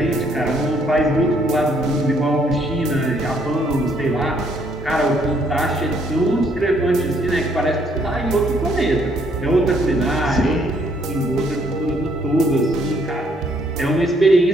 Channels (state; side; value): normal; both; correlation 0.68